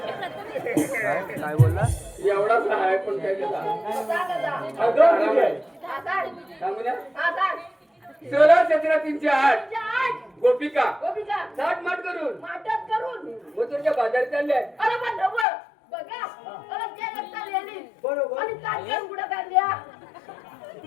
काय बोलला एवढाच आहे पण काय त्याला अगं किती आहे? सांगू ना आता 16-17-308 गोपिका गोपिका साठ माठ करून माटत करून मथुरच्या बाजारी चालले अरे पण ढवळ बघा अरे ते लगता लिहिली बरोबर आणि काढल्या कुठं काढल्या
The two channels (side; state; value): right; drops out; at 15.5 s